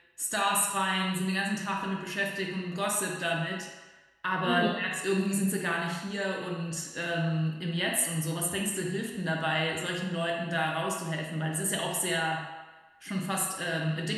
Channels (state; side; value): identical; both; correlation 1.00